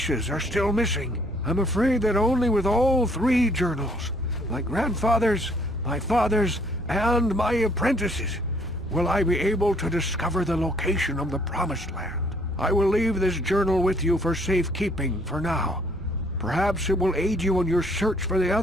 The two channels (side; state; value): both; normal; correlation 0.63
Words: are still missing. I'm afraid that only with all three journals, my grandfather's, my father's, and my apprentice's, will I be able to discover the location of the Promised Land. I will leave this journal with you for safekeeping for now. Perhaps it will aid you in your search for the